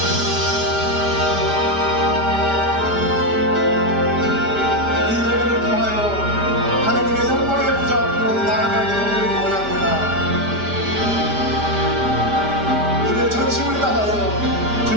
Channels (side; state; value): left; late; 5.1 ms